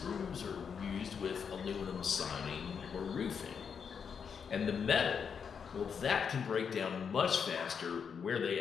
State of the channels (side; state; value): right; quieter; 6.7 dB